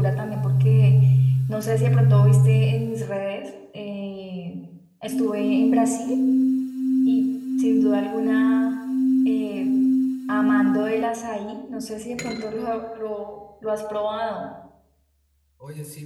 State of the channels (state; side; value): identical; both; correlation 1.00